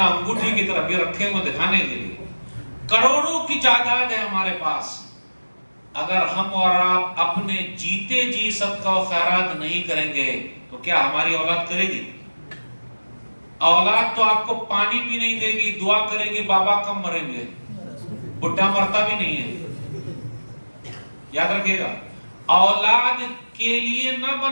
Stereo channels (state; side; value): inverted; both; correlation -1.00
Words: انگوٹھی کی طرف یہ رکھے ہوئے دکھانے کے لیے، کروڑوں کی جائیداد ہے ہمارے پاس، اگر ہم اور آپ اپنے جیتے جی صدقہ و خیرات نہیں کریں گے تو کیا ہماری اولاد کرے گی؟ اولاد تو آپ کو پانی بھی نہیں دے گی، دعا کرے گی بابا کم مریں گے، بڈھا مرتا بھی نہیں ہے۔ یاد رکھیے گا، اولاد کے لیے نہ